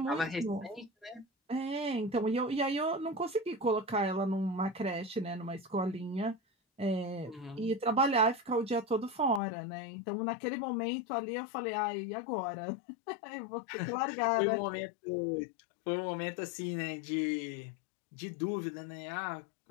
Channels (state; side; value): drops out; right; at 9.4 s